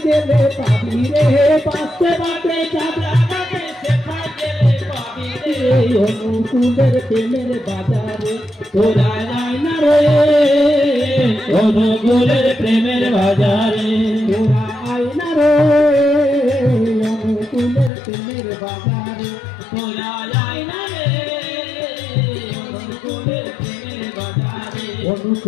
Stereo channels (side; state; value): right; drops out; at 17.9 s